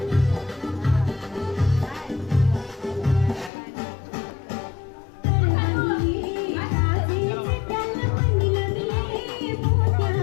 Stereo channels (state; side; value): drops out; right; at 3.5 s